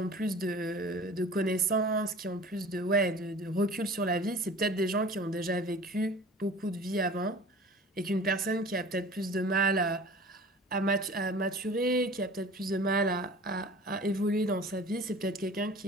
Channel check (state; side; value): normal; both; correlation 0.42